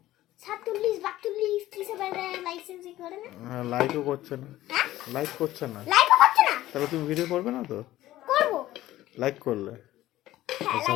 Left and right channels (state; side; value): quieter; right; 15.2 dB